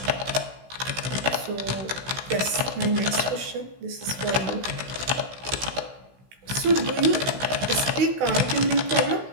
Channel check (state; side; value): late; left; 16 ms